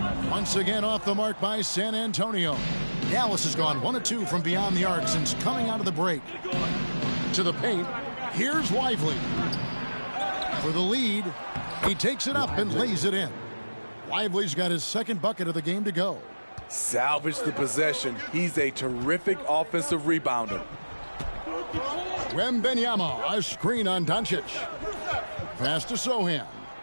Once again off the mark by San Antonio. Dallas has gone 1 of 2 from beyond the arc since coming out of the break. To the paint. Here's Lively. For the lead. He takes it up and lays it in. Lively's got his 2nd bucket of the game to go. Salvage the possession. He's a terrific offensive rebounder. Wembanyama, a screen on Doncic. Pass to Sohan.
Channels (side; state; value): both; inverted; correlation -1.00